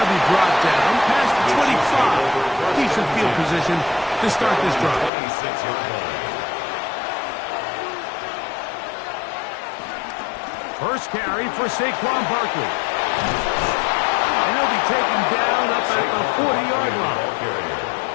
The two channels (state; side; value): drops out; right; at 5.1 s